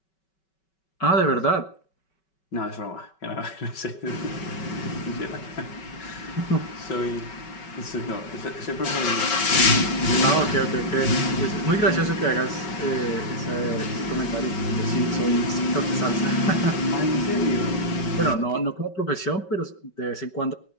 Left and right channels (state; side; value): late; right; 5.3 ms